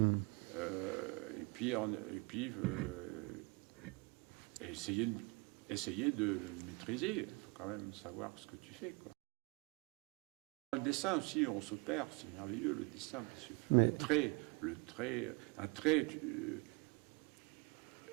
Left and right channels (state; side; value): quieter; left; 27.9 dB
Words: puis essayer de maîtriser. Il faut quand même savoir ce que tu fais, quoi. Dans le dessin aussi, on se perd. C'est merveilleux, le dessin, parce que un trait,